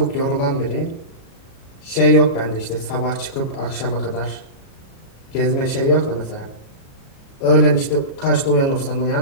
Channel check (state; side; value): late; right; 37 ms